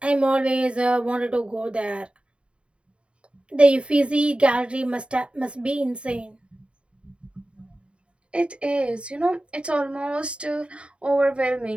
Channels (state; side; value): late; left; 0.057 ms